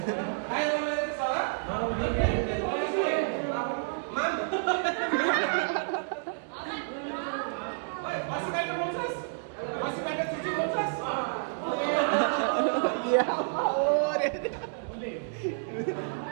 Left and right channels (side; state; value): left; silent; digital silence